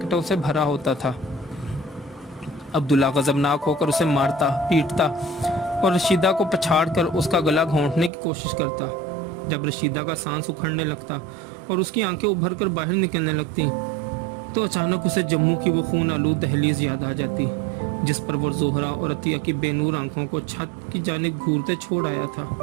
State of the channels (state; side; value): drops out; left; at 8.1 s